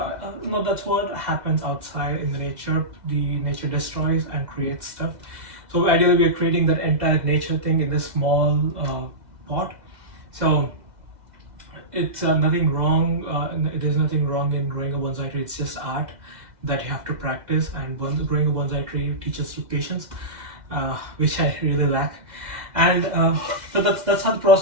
no, that's what happens outside in the nature. The nature destroys and creates stuff. So ideally, we're creating that entire nature thing in this small pot. So it's nothing wrong. There's nothing wrong in growing a bonsai tree. It's just art that you have to practice, and growing a bonsai tree teaches you patience, which I really lack. And so that's how the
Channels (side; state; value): left; late; 2.1 ms